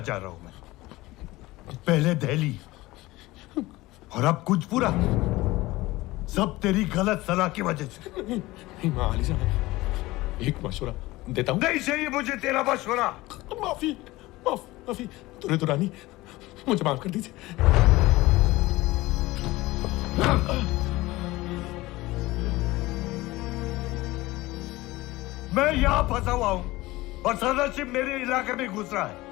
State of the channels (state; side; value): quieter; right; 19.3 dB